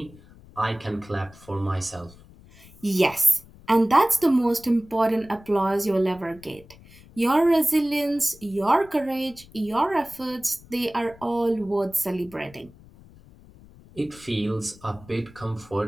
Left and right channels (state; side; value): noise; left; rumble, 23 dB below the sound